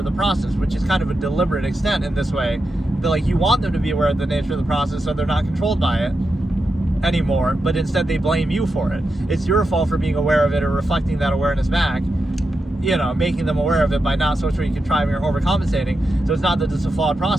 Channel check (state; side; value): normal; both; correlation 0.88